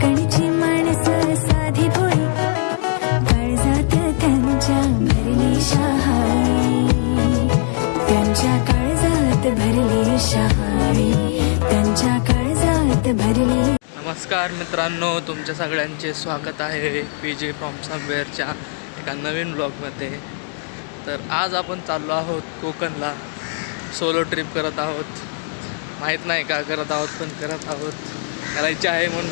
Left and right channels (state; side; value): silent; right; 66 dB below the other